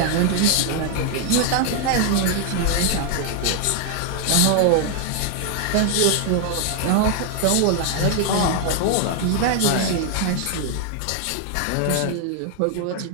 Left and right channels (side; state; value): both; different; correlation 0.00